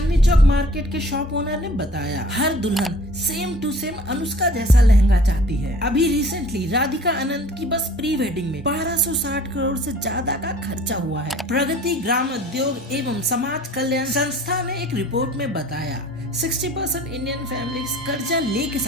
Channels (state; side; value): normal; both; correlation 0.49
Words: चौक मार्केट के शॉप ओनर ने बताया हर दुल्हन सेम टू सेम अनुष्का जैसा लहंगा चाहती है। अभी रिसेंटली राधिका आनंद की बस प्री वेडिंग में 1260 करोड़ से ज्यादा का खर्चा हुआ है। प्रगति ग्राम उद्योग एवं समाज कल्याण संस्था ने एक रिपोर्ट में बताया 60% इंडियन फैमिलीज कर्जा लेके